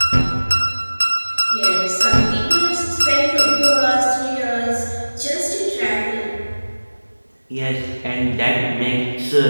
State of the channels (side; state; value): both; inverted; correlation -1.00